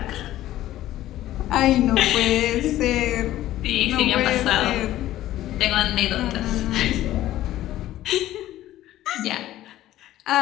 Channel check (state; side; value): quieter; right; 14.2 dB